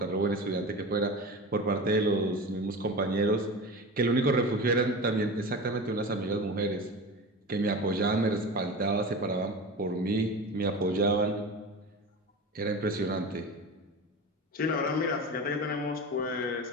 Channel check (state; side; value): normal; both; correlation 0.30